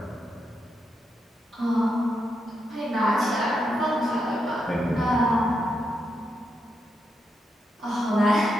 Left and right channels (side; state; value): both; normal; correlation 0.83